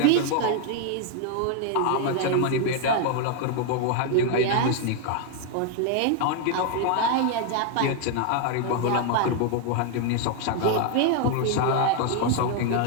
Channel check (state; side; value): different; both; correlation 0.00